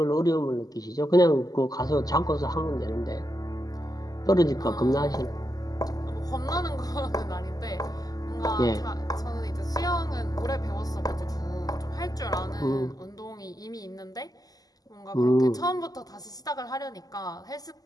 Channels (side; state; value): right; late; 0.18 ms